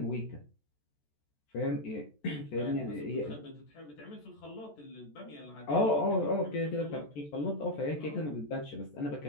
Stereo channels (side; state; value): right; late; 14 ms